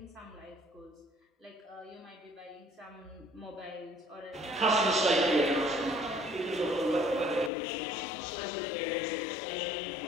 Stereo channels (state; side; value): drops out; right; at 7.5 s